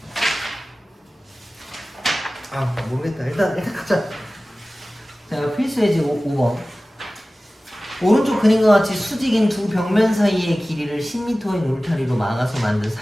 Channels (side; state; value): both; normal; correlation 0.97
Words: 모르겠다. 일단 가자. 자, 필수 예제 5번. 오른쪽 그림과 같이 수직인 두 벽면 사이의 길이를 10m인 울타리로 막아서 만든